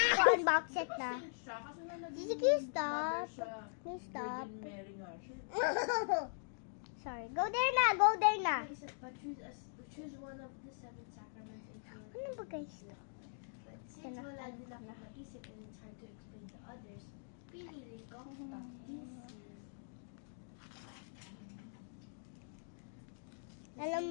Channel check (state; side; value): silent; right; digital silence